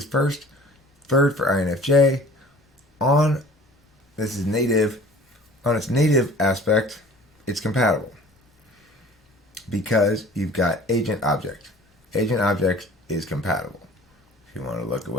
first, third for INFJ. This is native, on its native aspect, it's compatible because you've got agent object. Agent object is compatible. If you want to look at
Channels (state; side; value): normal; both; correlation 0.47